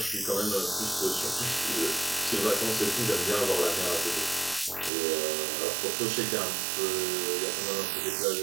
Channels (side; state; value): left; drops out; at 4.9 s